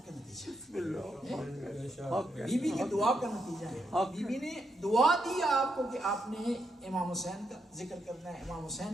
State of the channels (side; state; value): both; normal; correlation 0.80